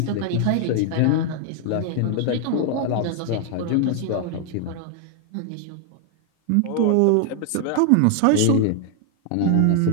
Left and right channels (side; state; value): both; different; correlation 0.00